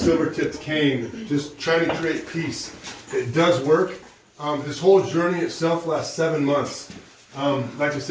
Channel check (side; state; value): both; identical; correlation 1.00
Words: cane, just trying to create peace. It does work. This whole journey itself lasts 7 months. Like I